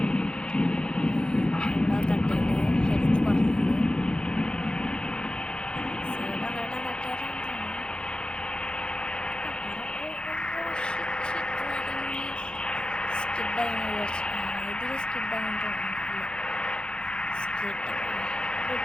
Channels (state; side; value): late; right; 0.049 ms